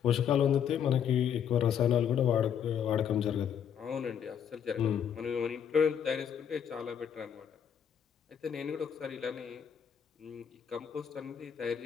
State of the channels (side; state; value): right; quieter; 8.3 dB